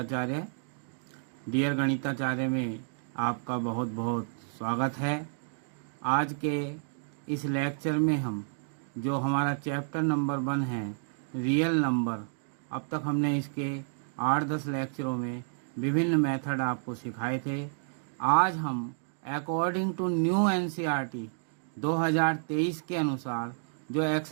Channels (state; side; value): silent; left; digital silence